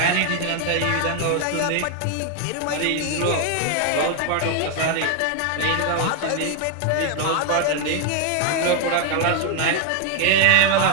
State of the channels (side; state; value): both; different; correlation 0.00